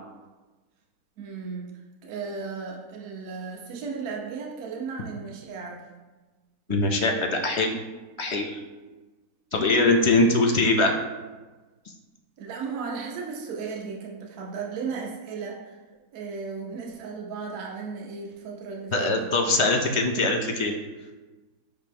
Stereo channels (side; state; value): left; late; 3.2 ms